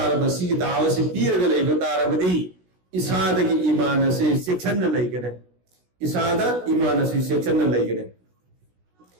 सिगी दावत से पीरगा लैब तारबदी इसाद की ईमान से शिक्षण लैगने इसाद ईमान से शिक्षण लैगने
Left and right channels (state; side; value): late; left; 16 ms